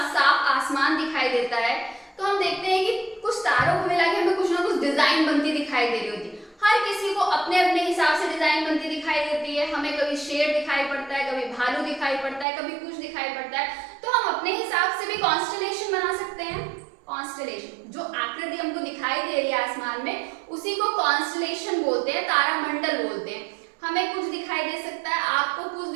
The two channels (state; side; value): drops out; left; at 12.5 s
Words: साफ आसमान दिखाई देता है, तो हम देखते हैं कि कुछ तारों को मिला के हमें कुछ ना कुछ डिजाइन बनती दिखाई दे रही होती है। हर किसी को अपने अपने हिसाब से डिजाइन बनती दिखाई देती है। हमें कभी शेर दिखाई पड़ता है, कभी भालू दिखाई पड़ता है, कभी कुछ दिखाई पड़ता है। तो हम अपने हिसाब से भी कॉन्स्टेलेशन बना सकते हैं। कॉन्स्टेलेशन, जो आकृति हमको दिखाई दे रही है आसमान में, उसी को कॉन्स्टेलेशन बोलते हैं, तारामंडल बोलते हैं। हमें कुछ दिखाई दे सकता है, आपको कुछ